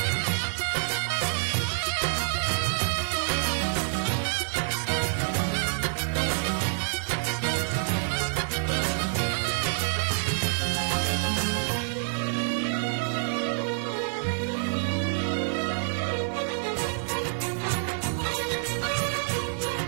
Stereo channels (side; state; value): left; silent; 59 dB below the other